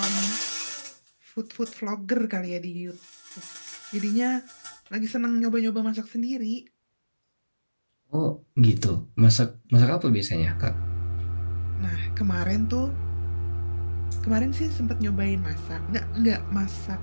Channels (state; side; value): inverted; both; correlation -1.00